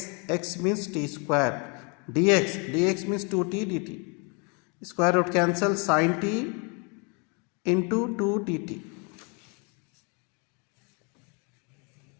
means t square, dx means 2t dt. Square root cancel, sine t into 2 dt.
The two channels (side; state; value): right; quieter; 33.9 dB